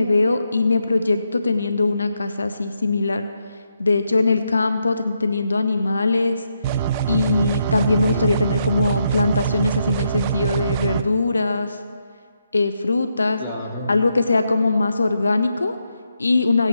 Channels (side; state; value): both; inverted; correlation -0.80